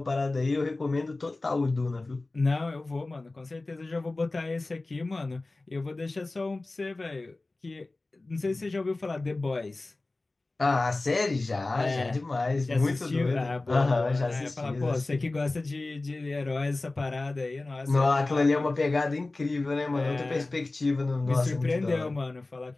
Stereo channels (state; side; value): quieter; right; 3.1 dB